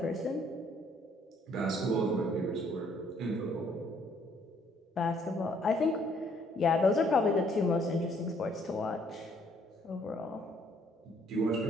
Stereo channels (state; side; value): normal; both; correlation 0.65